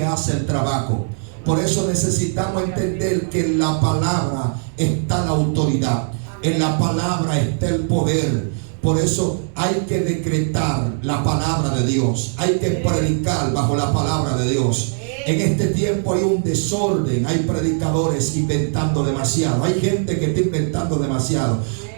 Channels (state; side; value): silent; left; digital silence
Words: hace el trabajo. Por eso necesitamos entender que en la palabra está la autoridad, en la palabra está el poder. Por eso hay que decretar la palabra de Dios, hay que predicar bajo la palabra de Dios. En este tiempo hay un desorden, hay predicadores inventando demasiado, hay gente que está inventando demasiado.